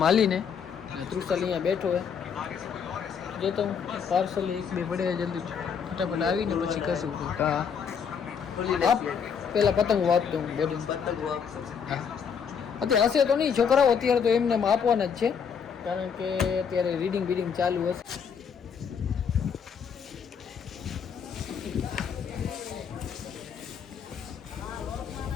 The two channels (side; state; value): right; quieter; 6.9 dB